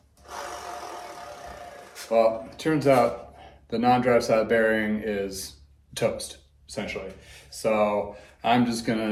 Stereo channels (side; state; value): both; identical; correlation 1.00